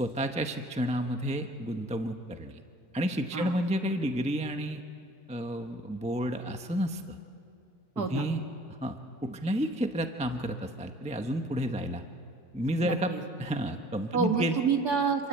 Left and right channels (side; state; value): both; normal; correlation 0.51